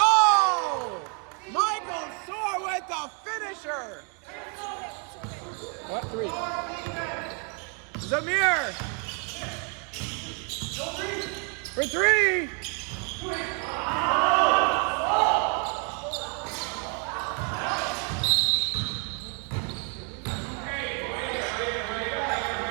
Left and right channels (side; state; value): left; quieter; 38.4 dB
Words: Michael Soar with the finisher. What, 3? Zamir. For 3.